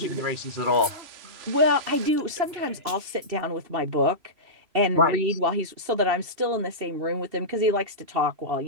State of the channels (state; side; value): late; left; 3.0 ms